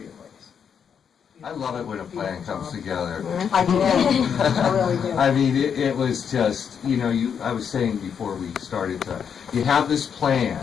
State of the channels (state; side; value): quieter; right; 7.4 dB